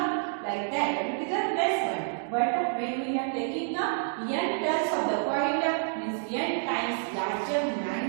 Like that, it is a less one. But when we are taking n turns of the coil, means n times larger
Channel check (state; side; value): silent; left; digital silence